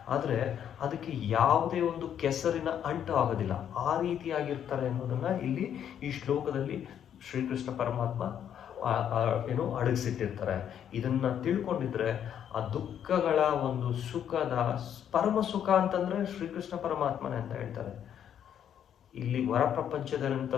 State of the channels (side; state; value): right; quieter; 9.3 dB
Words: ಆದರೆ ಅದಕ್ಕೆ ಯಾವುದೇ ಒಂದು ಕೆಸರಿನ ಅಂಟು ಆಗೋದಿಲ್ಲ. ಆ ರೀತಿಯಾಗಿರ್ತಾರೆ ಅನ್ನೋದನ್ನು ಇಲ್ಲಿ ಈ ಶ್ಲೋಕದಲ್ಲಿ ಶ್ರೀಕೃಷ್ಣ ಪರಮಾತ್ಮ ಅಡಗಿಸಿಟ್ಟಿರ್ತಾರೆ. ಇದನ್ನು ತಿಳ್ಕೊಂಡಿದ್ರೆ ಆ ದುಃಖಗಳ ಒಂದು ಸುಖದ ಪರಮ ಸುಖ ಅಂತಂದರೆ ಶ್ರೀಕೃಷ್ಣ ಪರಮಾತ್ಮನೇ ಅಂತ ಹೇಳ್ತಾರೆ. ಇಲ್ಲಿ ಹೊರ ಪ್ರಪಂಚದಂತ